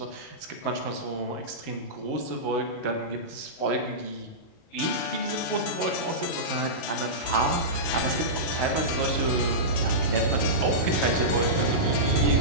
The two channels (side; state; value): right; late; 37 ms